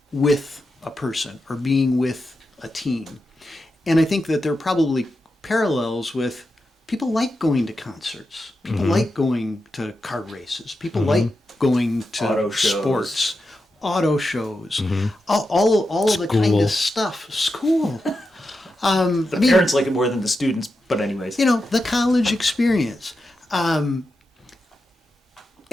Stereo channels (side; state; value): both; normal; correlation 0.89